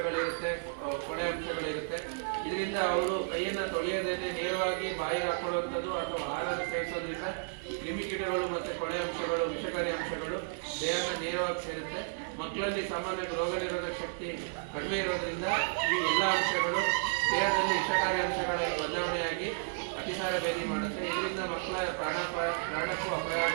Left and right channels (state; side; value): silent; left; digital silence